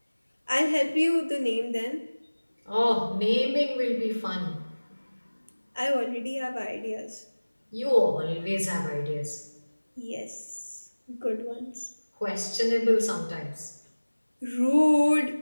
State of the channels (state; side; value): inverted; both; correlation -1.00